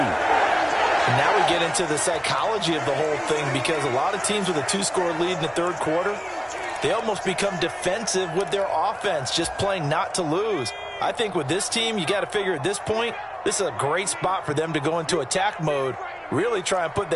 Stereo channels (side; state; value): both; identical; correlation 1.00